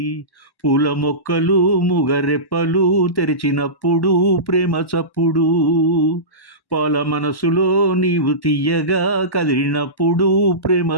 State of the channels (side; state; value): right; late; 1.1 ms